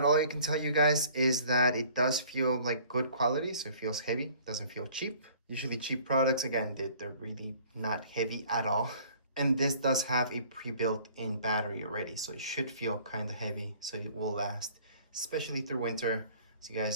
all I can tell you guys is that it does feel like good quality. So it feels heavy, doesn't feel cheap. Usually cheap products, again, they're really not heavy at all. And this does have a pre-built-in battery already, so it should feel kind of heavy, so it will last, especially through winter. As you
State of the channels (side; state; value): both; inverted; correlation -0.53